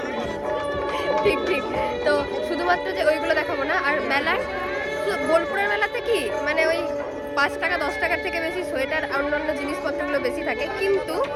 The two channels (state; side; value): identical; both; correlation 1.00